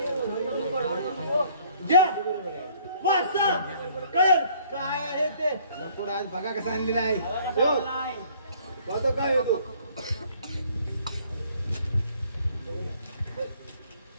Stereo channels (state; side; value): inverted; both; correlation -0.59